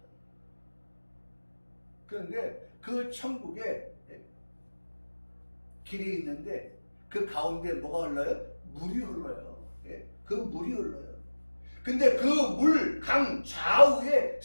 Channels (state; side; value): inverted; both; correlation -1.00